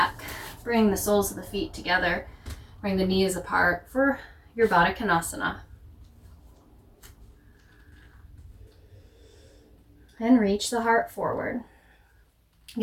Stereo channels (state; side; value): identical; both; correlation 1.00